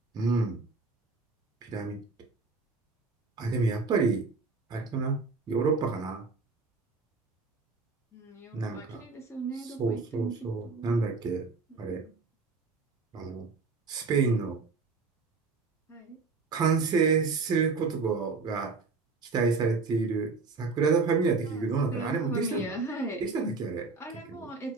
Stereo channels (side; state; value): left; quieter; 4.2 dB